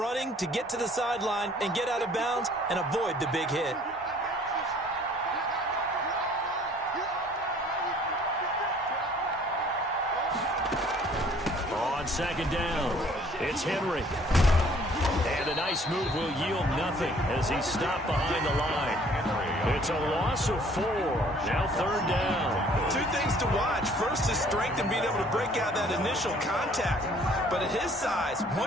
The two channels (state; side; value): normal; both; correlation 0.57